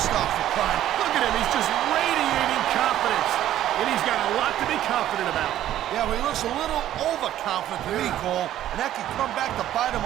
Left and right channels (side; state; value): left; quieter; 12.4 dB